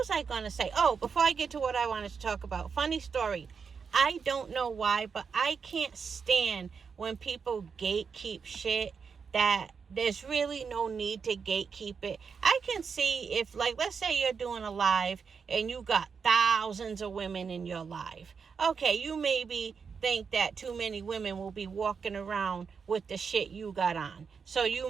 I going to say? Oh, before I get to what I wanted to talk about, funny story. I don't know why, but I can't stand when people gatekeep shit that there's really no need to gatekeep it. I can see if, like, let's say you're doing a live and you got thousands of women in your live. Okay, you maybe think that too many women will be walking around with the shit you got on. So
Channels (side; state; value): left; quieter; 5.9 dB